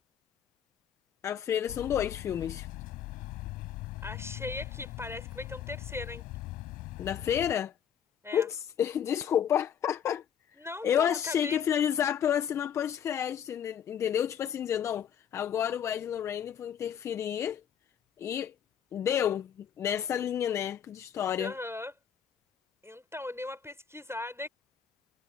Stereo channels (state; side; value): quieter; right; 8.7 dB